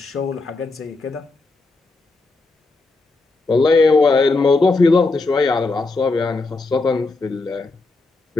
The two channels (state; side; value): quieter; right; 3.5 dB